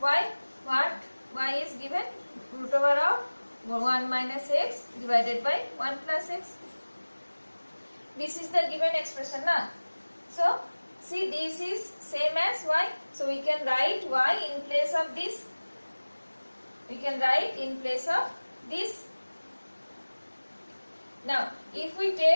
y. What y is given, root over of 1 minus x divided by 1 plus x. This is the given expression now. So see, this is same as y, so we can write y in place of this. We can write in place of this. Now if we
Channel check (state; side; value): inverted; both; correlation -1.00